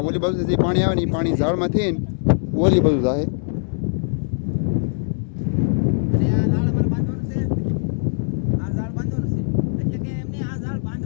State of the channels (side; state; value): right; silent; digital silence